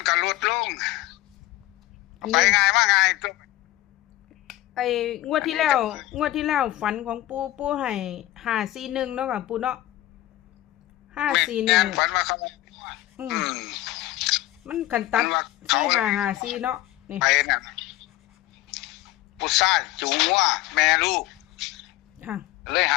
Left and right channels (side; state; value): right; quieter; 15.9 dB